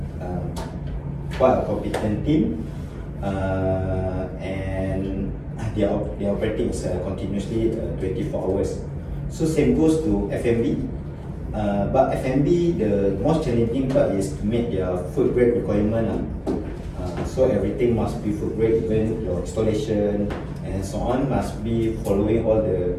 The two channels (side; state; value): both; identical; correlation 1.00